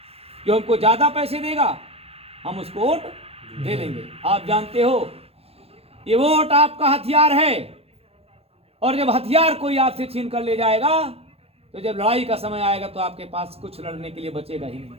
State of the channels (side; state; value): left; late; 0.29 ms